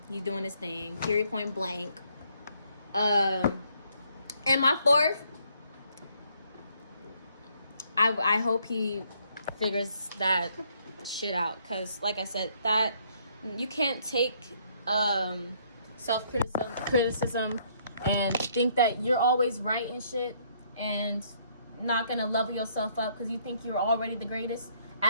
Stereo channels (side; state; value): both; inverted; correlation -0.68